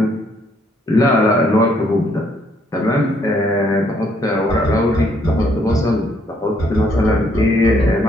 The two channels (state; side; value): normal; both; correlation 0.69